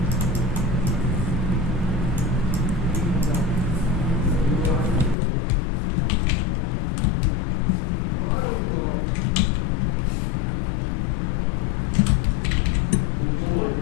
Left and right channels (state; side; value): drops out; right; at 5.2 s